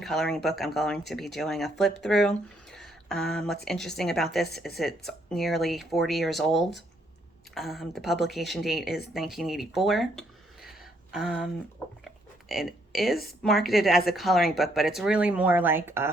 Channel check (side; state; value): both; normal; correlation 0.71